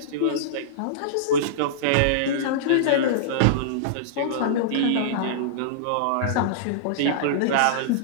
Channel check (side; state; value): both; different; correlation -0.03